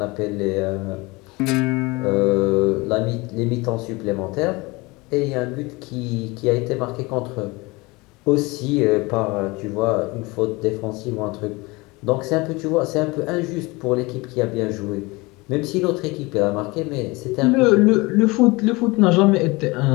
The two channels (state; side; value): quieter; right; 24.0 dB